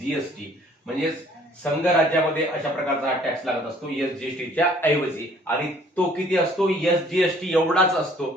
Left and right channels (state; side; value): normal; both; correlation 0.58